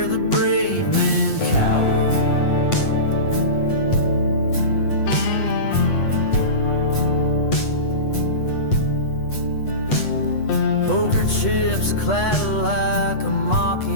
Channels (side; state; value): right; late; 8.2 ms